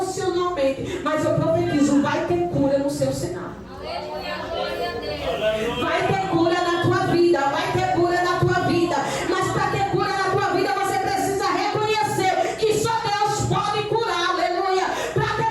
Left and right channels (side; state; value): both; identical; correlation 1.00